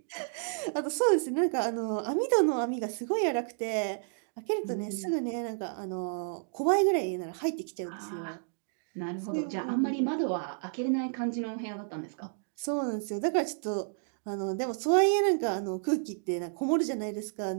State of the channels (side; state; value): left; silent; digital silence